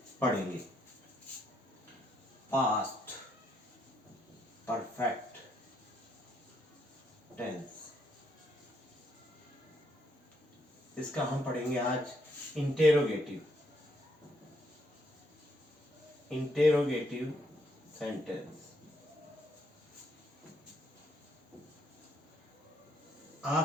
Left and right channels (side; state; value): both; normal; correlation 0.74